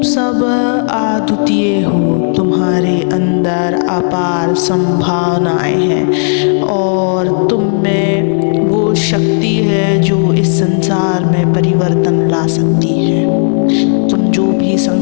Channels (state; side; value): silent; right; digital silence